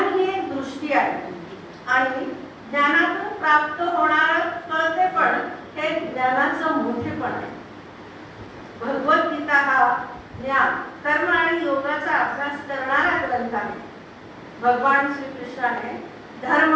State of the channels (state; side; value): identical; both; correlation 1.00